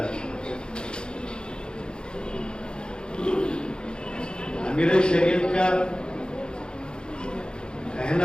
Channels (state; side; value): late; right; 0.050 ms